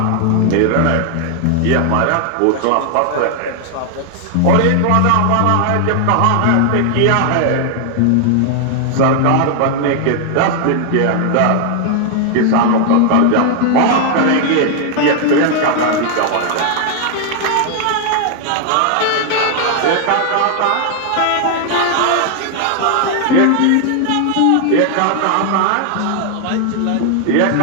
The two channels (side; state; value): both; different; correlation 0.00